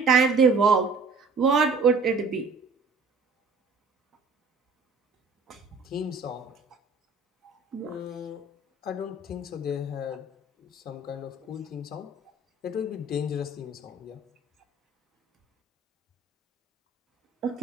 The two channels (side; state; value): left; quieter; 3.7 dB